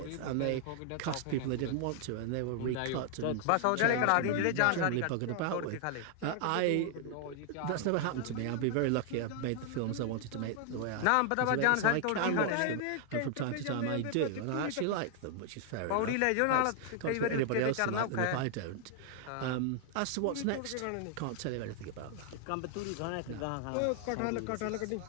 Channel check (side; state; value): both; different; correlation 0.00